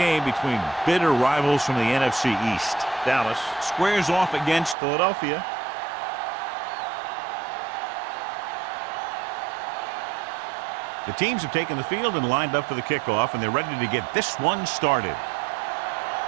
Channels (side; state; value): left; drops out; at 4.8 s